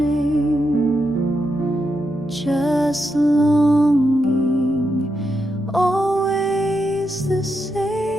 just longing, always the same.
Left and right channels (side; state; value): both; normal; correlation 0.84